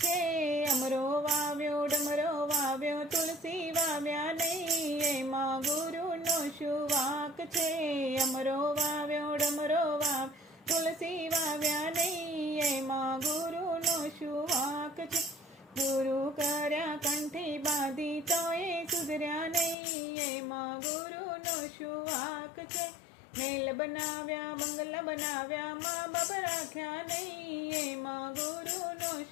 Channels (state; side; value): drops out; right; at 19.8 s